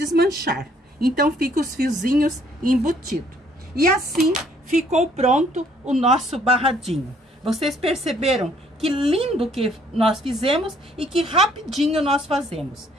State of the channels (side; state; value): both; normal; correlation 0.63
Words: Então fica os fiozinhos embutidos. E assim ficou pronto o nosso barradinho. Vocês perceberam que lindo que nós fizemos e que rapidinho nós fazemos.